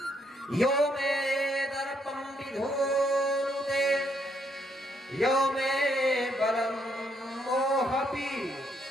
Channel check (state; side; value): normal; both; correlation 0.73